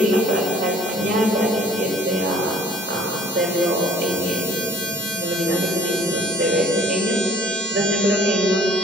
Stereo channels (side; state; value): both; normal; correlation 0.56